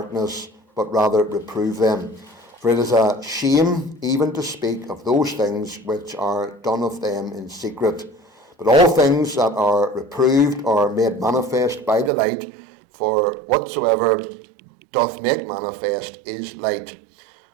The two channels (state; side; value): drops out; left; at 12.1 s